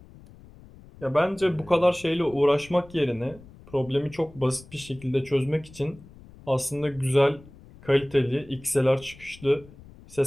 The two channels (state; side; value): noise; left; rumble, 21 dB below the sound